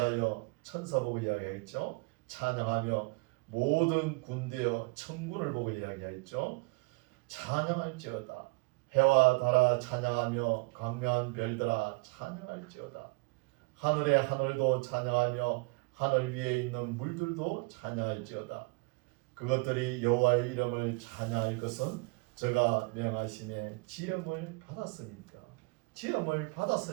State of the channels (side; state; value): left; quieter; 28.1 dB